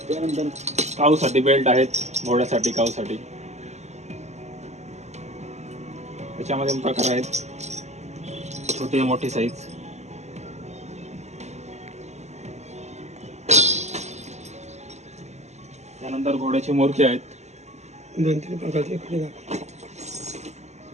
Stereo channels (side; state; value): left; late; 0.33 ms